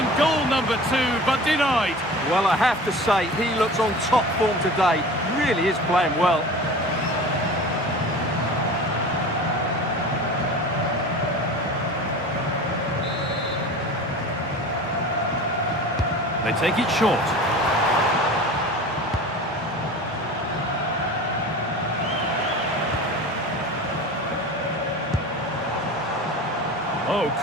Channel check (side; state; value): both; normal; correlation 0.36